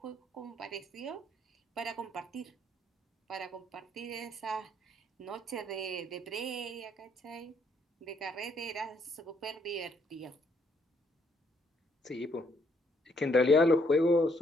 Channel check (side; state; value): both; normal; correlation 0.70